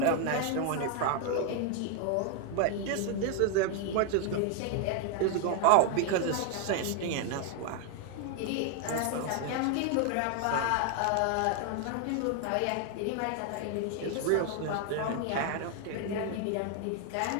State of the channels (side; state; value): both; different; correlation 0.00